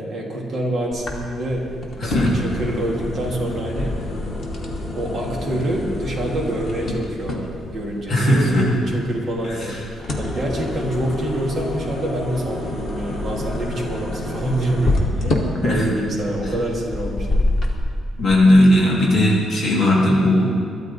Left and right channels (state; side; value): normal; both; correlation 0.80